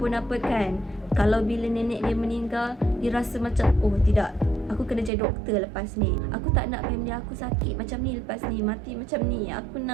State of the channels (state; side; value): drops out; left; at 5.1 s